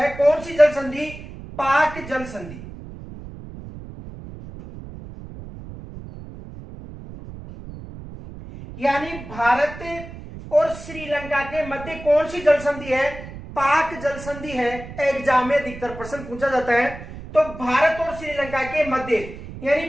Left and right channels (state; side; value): noise; right; rumble, 13 dB below the sound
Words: कौन सी जल संधि? पाक जल संधि। यानी भारत और श्रीलंका के मध्य कौन सी जल संधि है? पाक जल संधि है। एग्जाम में अधिकतर प्रश्न पूछा जाता है। तो भारत और श्रीलंका के मध्य,